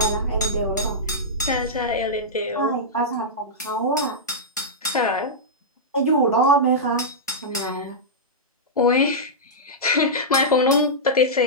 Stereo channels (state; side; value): normal; both; correlation -0.11